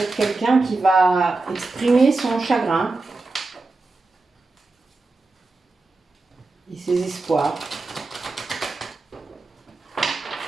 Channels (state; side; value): quieter; left; 3.4 dB